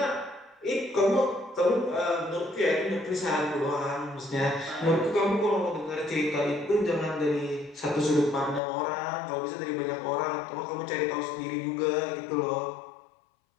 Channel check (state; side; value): drops out; right; at 8.6 s